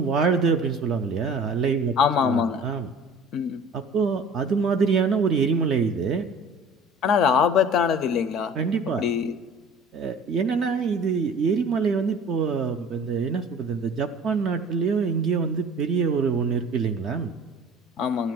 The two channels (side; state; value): both; normal; correlation 0.44